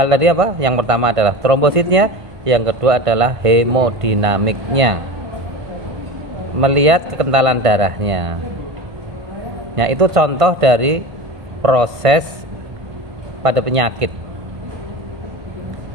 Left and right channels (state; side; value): late; left; 1.5 ms